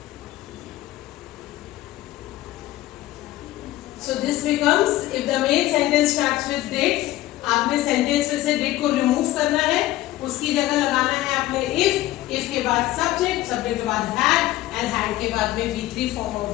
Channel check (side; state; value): right; quieter; 16.0 dB